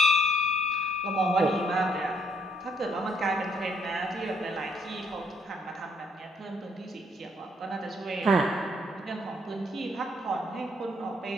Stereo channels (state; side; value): normal; both; correlation 0.70